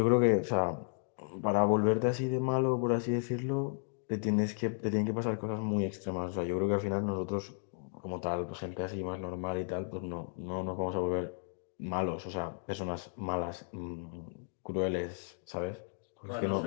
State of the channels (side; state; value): right; silent; digital silence